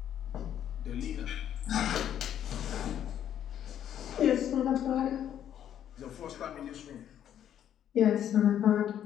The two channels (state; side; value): quieter; right; 10.2 dB